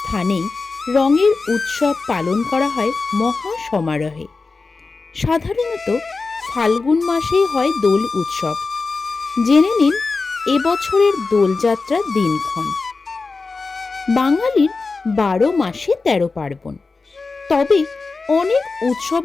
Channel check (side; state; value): right; quieter; 4.1 dB